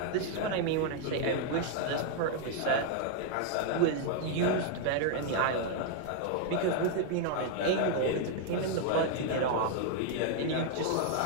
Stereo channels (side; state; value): both; different; correlation 0.00